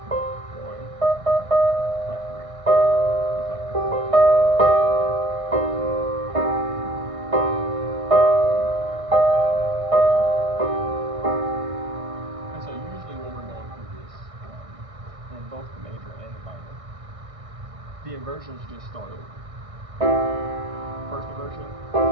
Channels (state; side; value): late; left; 1.6 ms